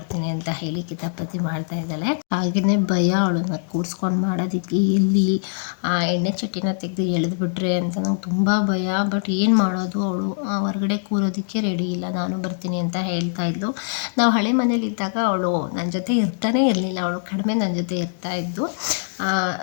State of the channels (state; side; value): silent; right; digital silence